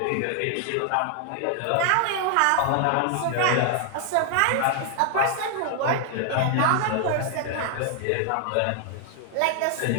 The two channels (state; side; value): different; both; correlation 0.00